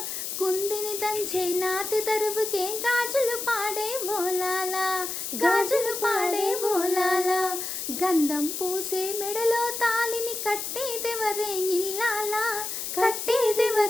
కుందిని దంచే నాతి తరువుకే గాజులు పాడే ఓలాలా గాజులు పాడే ఓలాలా గంధం పూసే మెడలో తాలిని కట్టేదెవరే ఇల్లాలా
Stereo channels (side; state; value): left; noise; hiss, 5 dB below the sound